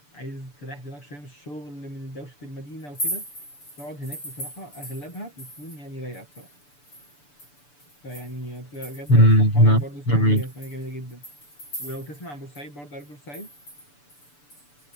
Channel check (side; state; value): right; late; 6.9 ms